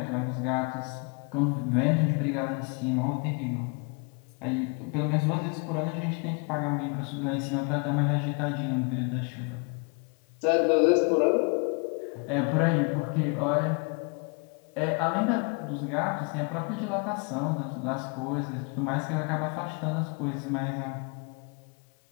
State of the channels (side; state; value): right; quieter; 34.2 dB